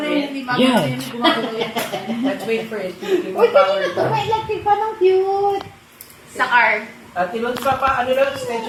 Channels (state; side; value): identical; both; correlation 1.00